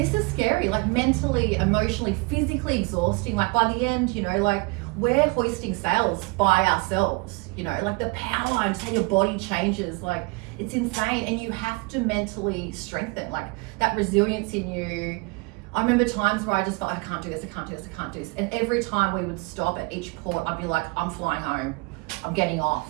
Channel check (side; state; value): left; quieter; 27.3 dB